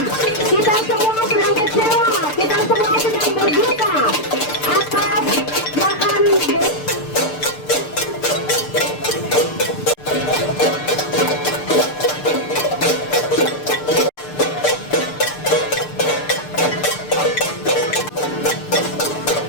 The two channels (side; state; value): right; late; 6.7 ms